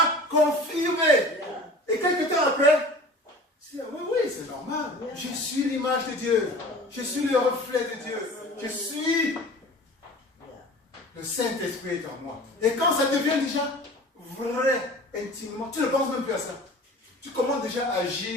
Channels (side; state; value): both; normal; correlation 0.41